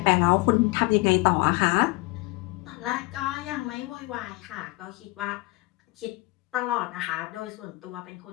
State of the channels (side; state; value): right; quieter; 23.1 dB